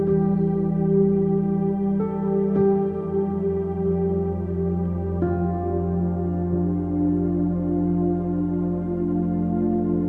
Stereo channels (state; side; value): identical; both; correlation 1.00